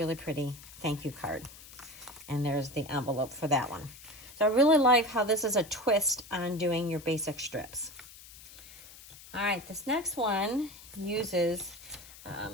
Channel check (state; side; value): noise; left; hiss, 18 dB below the sound